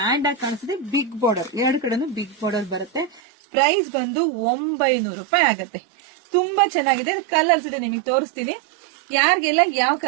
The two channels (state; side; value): drops out; left; at 3.2 s